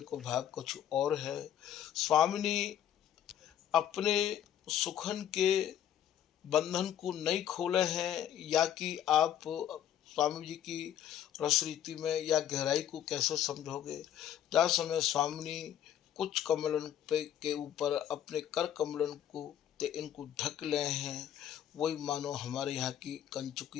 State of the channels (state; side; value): quieter; right; 10.5 dB